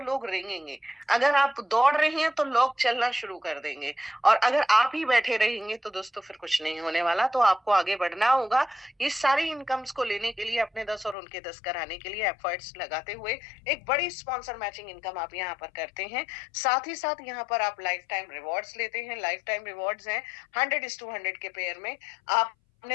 लोग रेंगेंगे, अगर आप दौड़ रहे हैं तो लोग चलना शुरू कर देंगे, और अगर आप ही बैठे रहेंगे तो दोस्तों फिर कुछ नहीं होने वाला। तो आपको आगे बढ़ना होगा। ये सारी इनकम्स को लेने के लिए, अपने 10 और उनके 10 कराने के लिए एफर्ट्स लगाते हुए एक बड़ी स्पॉन्सर मैचिंग इनकम आप यहाँ पर करते हैं। साथ ही साथ यहाँ पर आप लाइफ टाइम रिवॉर्ड्स लेते हैं। लाइफ टाइम रिवॉर्ड्स हैं 100:100 के पेयर में।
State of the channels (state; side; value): drops out; right; at 11.2 s